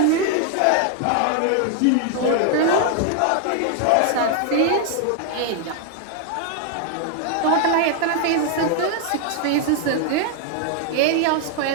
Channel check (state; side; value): different; both; correlation 0.00